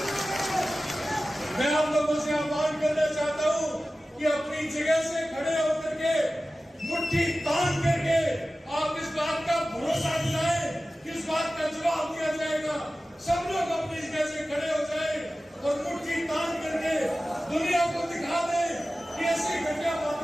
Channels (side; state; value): both; normal; correlation 0.95